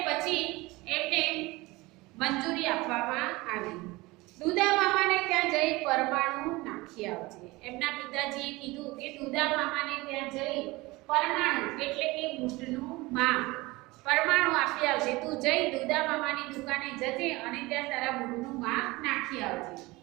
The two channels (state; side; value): quieter; left; 21.8 dB